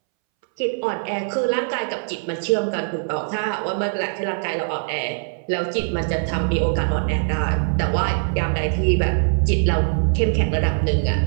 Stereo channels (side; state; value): left; silent; 64 dB below the other